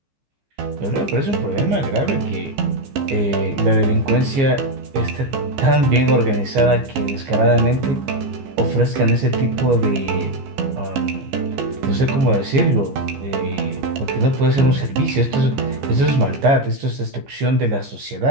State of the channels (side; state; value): left; late; 15 ms